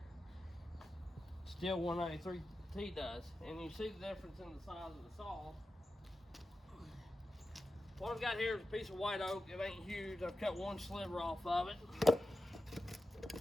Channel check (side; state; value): both; normal; correlation 0.93